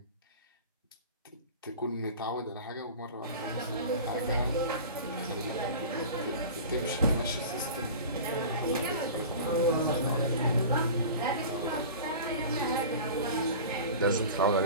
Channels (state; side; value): inverted; both; correlation -0.36